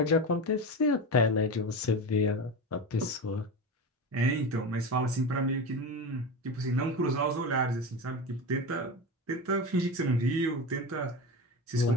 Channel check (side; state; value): both; normal; correlation 0.23